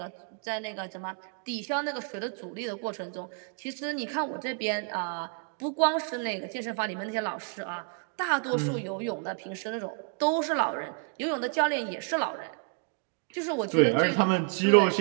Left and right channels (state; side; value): quieter; left; 39.7 dB